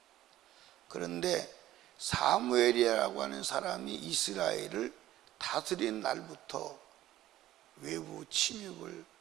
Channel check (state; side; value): quieter; left; 14.2 dB